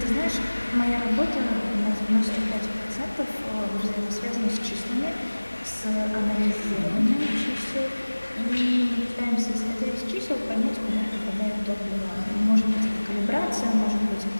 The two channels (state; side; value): inverted; both; correlation -1.00